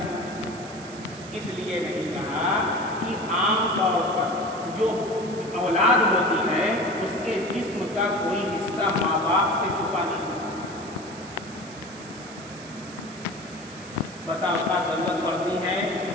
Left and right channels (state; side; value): noise; right; hiss, 18 dB below the sound